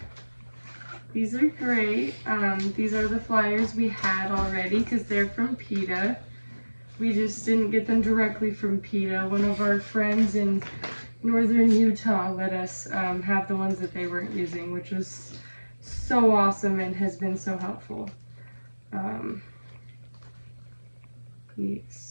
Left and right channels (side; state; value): both; inverted; correlation -1.00